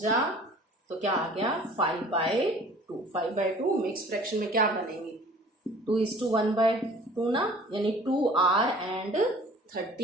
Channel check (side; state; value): both; normal; correlation 0.49